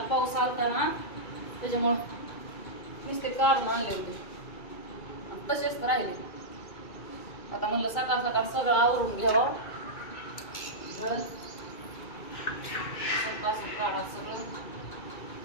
पाऊस आलता ना त्याच्यामुळं नुसते काढून आणले होते आणि तसेच राहिले. आता म्हणलं सकाळ सकाळ सगळं आवरून घ्यावं. काढा सगळं.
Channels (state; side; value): late; right; 2.2 ms